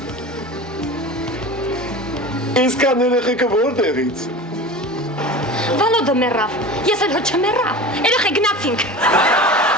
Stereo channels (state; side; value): normal; both; correlation 0.33